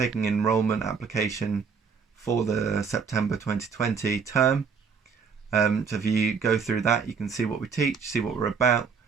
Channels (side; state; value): left; quieter; 5.8 dB